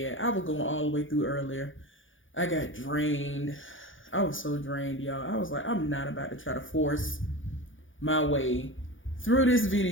I was going all the way through earlier. I got drained. I was so drained, y'all. I was like, I'm not about to try to force my way through this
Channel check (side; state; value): right; late; 0.57 ms